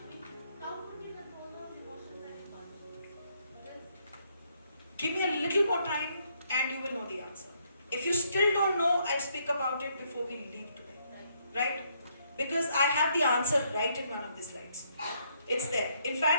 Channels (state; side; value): inverted; both; correlation -0.72